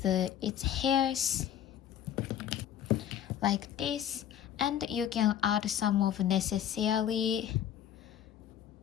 its hairs like this, and you can add some of necessary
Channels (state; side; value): quieter; right; 10.3 dB